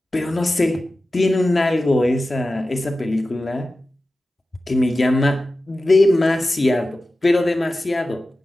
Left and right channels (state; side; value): normal; both; correlation 0.94